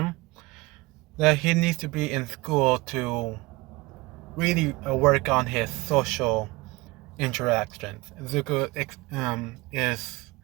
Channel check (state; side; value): quieter; left; 22.7 dB